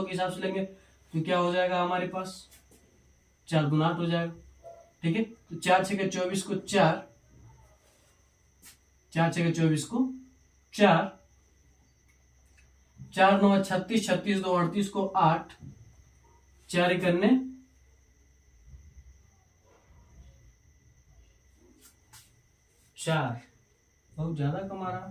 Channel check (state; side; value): identical; both; correlation 1.00